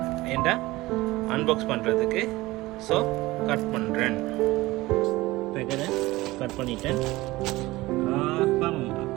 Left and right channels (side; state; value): left; quieter; 19.4 dB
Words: ஏன்டா அன்பாக்ஸ் பண்ணுறதுக்கு. ஸோ கட் பண்ணுறேன். பேக்கெட்டை கட் பண்ணிட்டேன். பாவம்